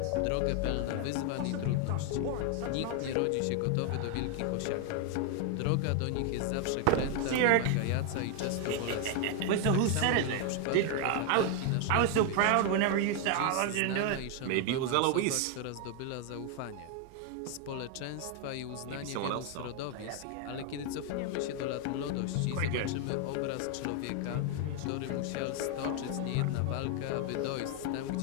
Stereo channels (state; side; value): different; both; correlation 0.00